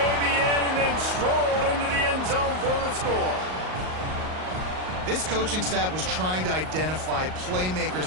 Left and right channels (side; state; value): left; late; 38 ms